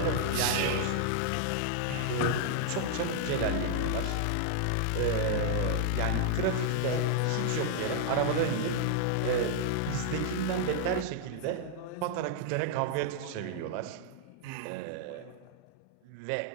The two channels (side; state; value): both; different; correlation -0.01